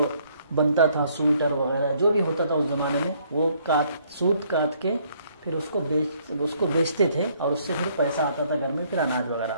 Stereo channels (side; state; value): both; inverted; correlation -0.66